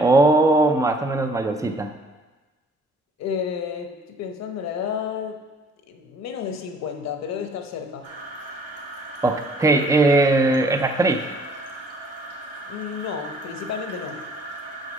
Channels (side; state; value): both; normal; correlation 0.56